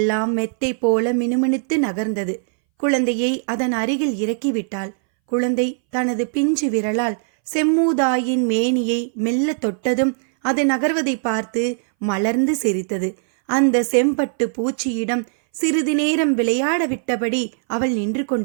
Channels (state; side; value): silent; left; 62 dB below the other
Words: மெத்தை போல மினுமினுத்து நகர்ந்தது. குழந்தையை அதன் அருகில் இறக்கிவிட்டாள். குழந்தை தனது பிஞ்சு விரலால் செம்மூதாயின் மேனியை மெல்ல தொட்டதும் அது நகர்வதை பார்த்து மலர்ந்து சிரித்தது. அந்த செம்பட்டு பூச்சியிடம் சிறிது நேரம் விளையாட விட்டபடி அவள் நின்று